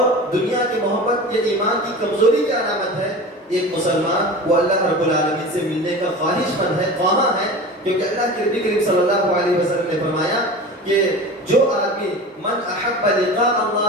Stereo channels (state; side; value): normal; both; correlation 0.33